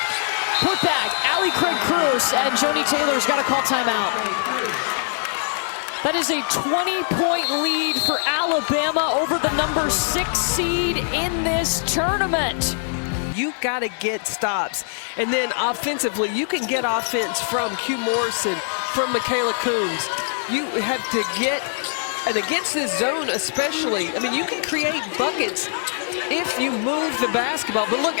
Put back, Allie Craig Cruz, and Joni Taylor's got to call timeout. That is a 20-point lead for Alabama over the number 6 seed in this tournament. You got to get stops. And then offensively, you can get offense from Q Morrison, from Michaela Coombs. You have to get, and against this zone especially, I mean, you can create buckets if you move the basketball. But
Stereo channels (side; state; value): right; silent; 64 dB below the other